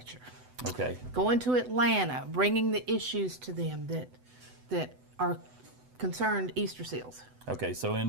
Okay. Going to Atlanta, bringing the issues to them that are concerned Easter Seals. Okay, so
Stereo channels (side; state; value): left; late; 8.0 ms